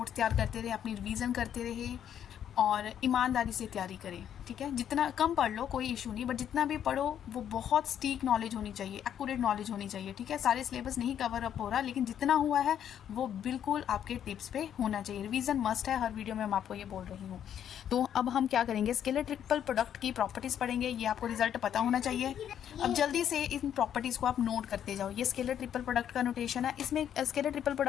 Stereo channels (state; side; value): quieter; right; 9.6 dB